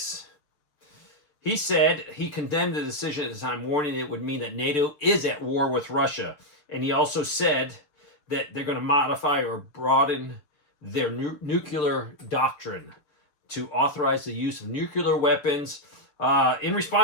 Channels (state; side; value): late; right; 6.7 ms